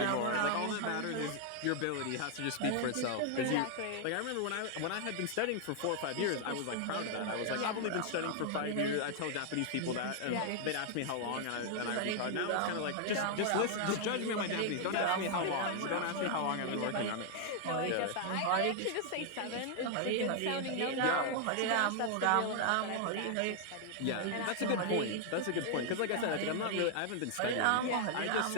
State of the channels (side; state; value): both; different; correlation 0.00